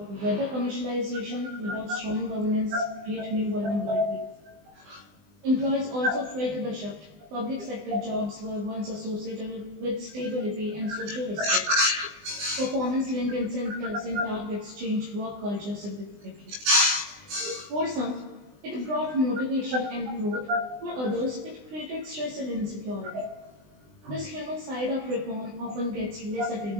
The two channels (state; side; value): late; left; 20 ms